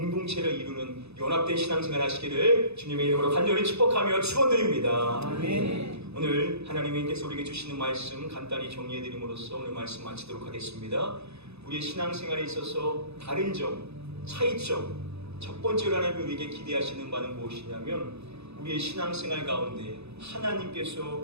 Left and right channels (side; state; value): left; late; 0.79 ms